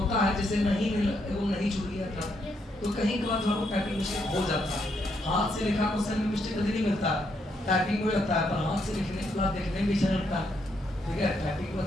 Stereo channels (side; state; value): both; normal; correlation 0.76